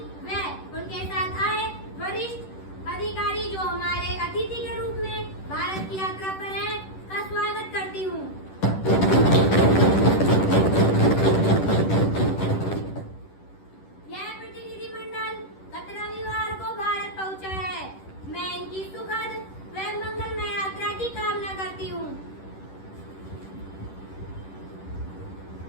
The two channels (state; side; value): late; right; 10 ms